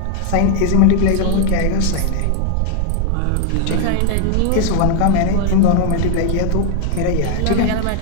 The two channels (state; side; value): different; both; correlation 0.00